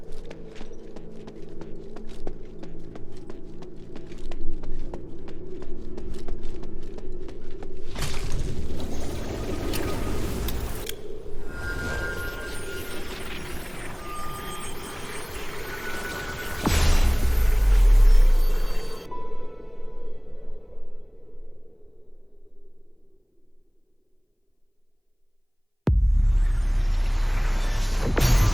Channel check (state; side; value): identical; both; correlation 1.00